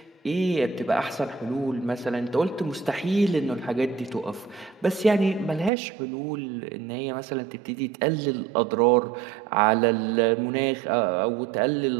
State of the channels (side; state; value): left; drops out; at 5.7 s